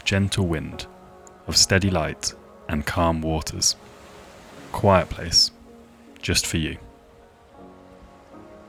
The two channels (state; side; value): identical; both; correlation 1.00